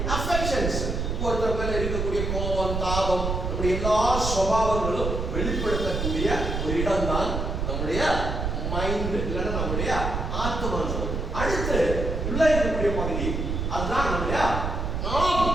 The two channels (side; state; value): right; noise; rumble, 2 dB below the sound